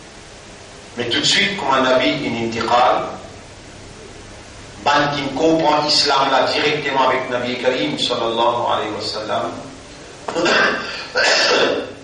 Mais tout de suite, comme un nabi, une intiqal, ban qui comprend l'islam là directement avec Nabi Karim sallallahu alayhi wa sallam,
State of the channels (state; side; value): identical; both; correlation 1.00